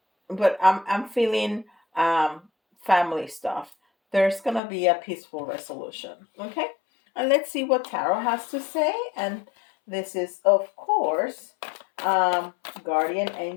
but I'm feeling um, family stuff. There's gonna be a peaceful resolution. Okay, and let's see what tarot has to say. And this is, of course, guardian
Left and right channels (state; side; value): drops out; right; at 4.6 s